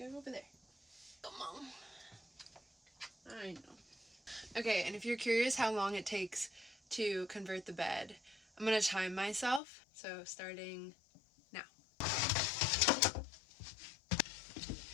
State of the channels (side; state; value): right; drops out; at 9.6 s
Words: go over there. Come on. I know. Okay, and if you're curious how long it takes to convert the bed, I'm gonna time myself. So starting now.